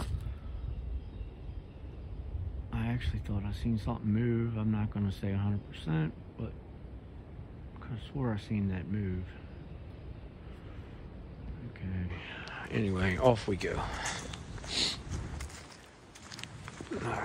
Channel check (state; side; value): identical; both; correlation 1.00